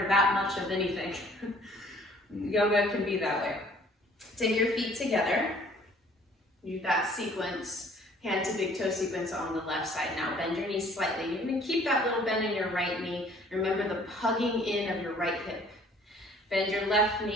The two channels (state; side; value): normal; both; correlation 0.56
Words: of anything. Yoga can be that way. Take your feet together. Do that sequence, hand to big toe sequence on the left side. Now bend your knees slightly. You're going to keep that little bend in your right knee. Remember the hugging in of your right hip. Bend your left